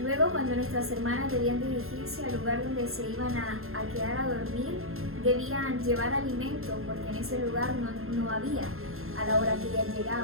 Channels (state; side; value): late; left; 0.61 ms